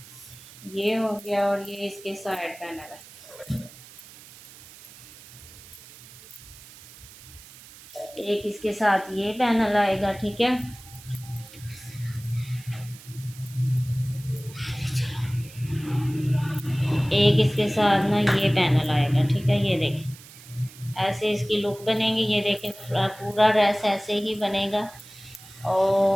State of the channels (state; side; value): noise; right; hiss, 19 dB below the sound